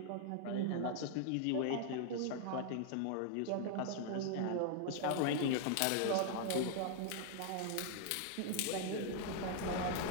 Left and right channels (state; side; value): different; both; correlation 0.00